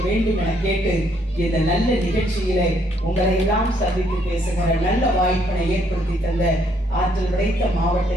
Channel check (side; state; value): both; normal; correlation 0.69